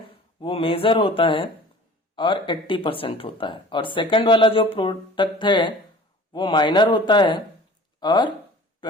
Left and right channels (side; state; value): both; normal; correlation 0.45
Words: वो मेजर होता है और 80% होता है, और सेकंड वाला जो प्रोडक्ट है वो माइनर होता है और